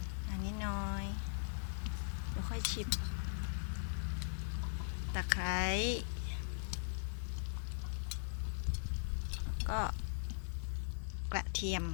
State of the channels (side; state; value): right; silent; digital silence